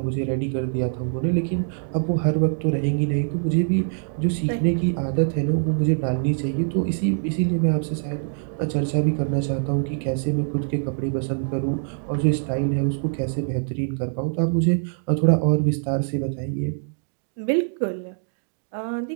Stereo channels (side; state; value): left; silent; digital silence